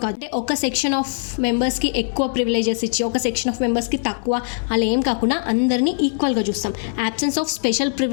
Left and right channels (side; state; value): right; silent; digital silence